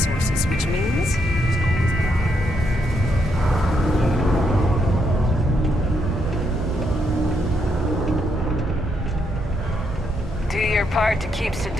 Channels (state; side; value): normal; both; correlation 0.78